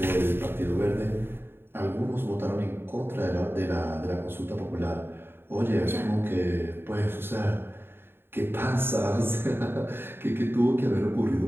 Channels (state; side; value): late; left; 0.11 ms